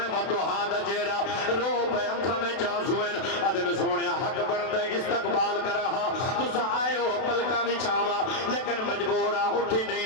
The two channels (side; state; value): right; late; 32 ms